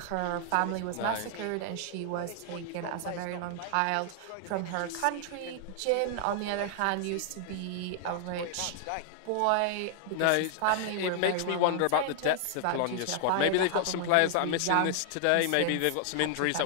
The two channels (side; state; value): both; different; correlation 0.00